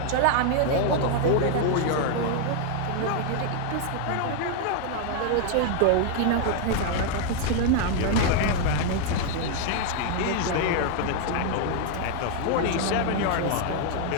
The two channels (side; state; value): both; different; correlation 0.00